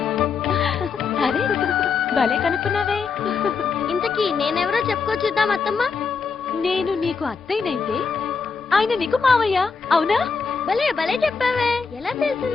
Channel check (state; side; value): quieter; right; 5.2 dB